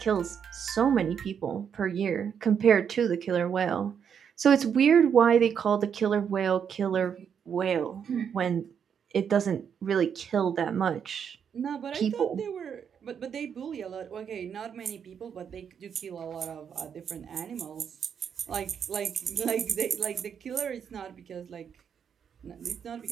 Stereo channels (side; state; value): left; quieter; 7.6 dB